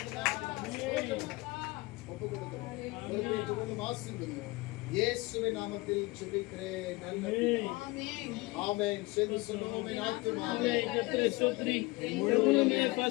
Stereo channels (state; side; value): quieter; right; 22.8 dB